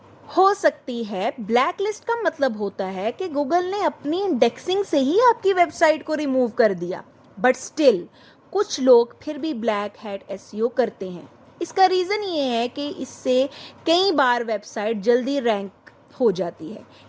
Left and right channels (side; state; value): both; identical; correlation 1.00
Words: हो सकती है। ब्लैक लिस्ट का मतलब होता है कि गूगल ने अपनी इंडेक्सिंग से ही आपकी वेबसाइट को रिमूव कर दिया, बट स्टिल कुछ लोग फिर भी ब्लैक हैट SEO करते हैं। इसका रीज़न ये है कि इससे कई बार वेबसाइट जल्दी रैंक हो जाती है,